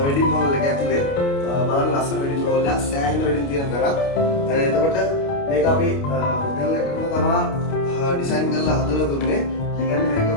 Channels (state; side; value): late; right; 29 ms